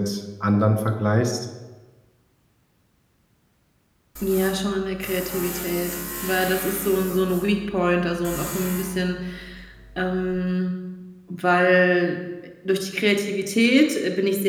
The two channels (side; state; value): both; identical; correlation 1.00